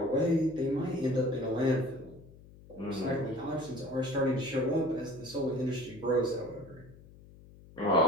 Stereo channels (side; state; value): left; noise; hum, 21 dB below the sound